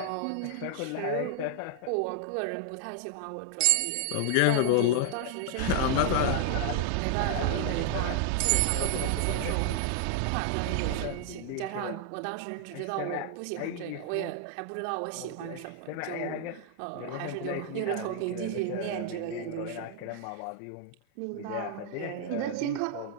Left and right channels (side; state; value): both; different; correlation 0.00